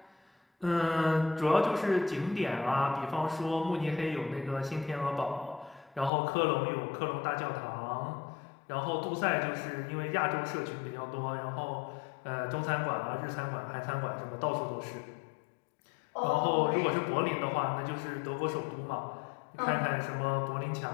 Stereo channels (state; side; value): drops out; right; at 6.1 s